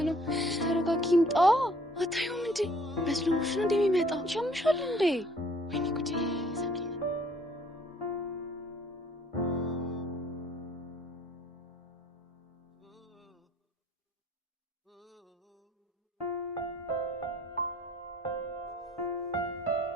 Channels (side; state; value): both; normal; correlation 0.59